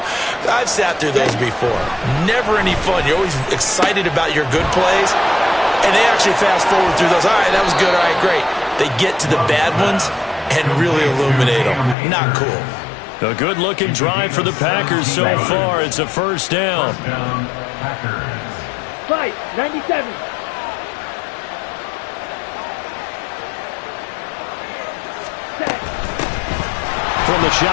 I've sat through those before. Never any fun. You're always excited about your good plays, and they actually fast forward through those. All right, that was good. All right, great. They get to the bad ones and really illuminate them. Not cool. A good-looking drive for the Packers so far. It's a first down. Fight, 97. From the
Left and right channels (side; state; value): right; drops out; at 12.0 s